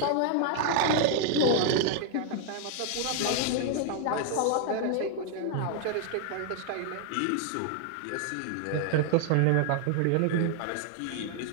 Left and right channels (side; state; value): both; different; correlation 0.00